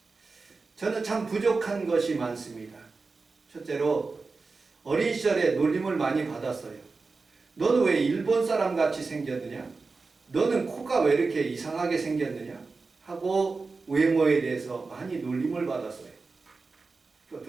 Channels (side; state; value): left; quieter; 4.1 dB